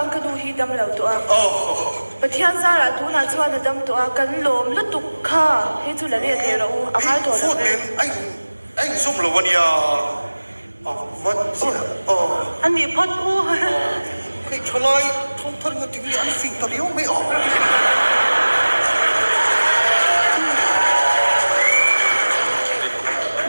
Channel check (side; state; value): both; inverted; correlation -1.00